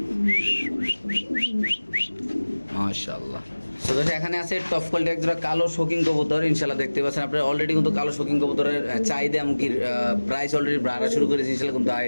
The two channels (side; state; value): both; inverted; correlation -1.00